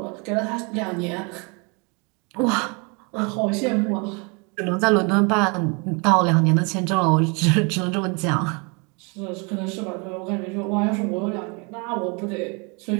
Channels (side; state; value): left; quieter; 31.9 dB